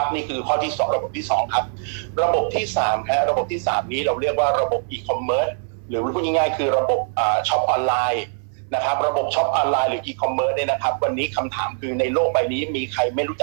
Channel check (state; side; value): silent; left; 64 dB below the other